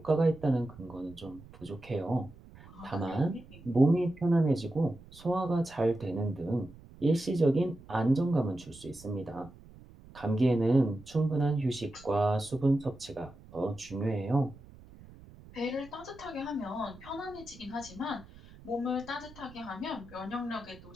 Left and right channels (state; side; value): noise; right; rumble, 21 dB below the sound